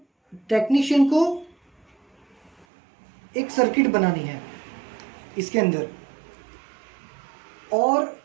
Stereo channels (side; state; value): left; drops out; at 2.7 s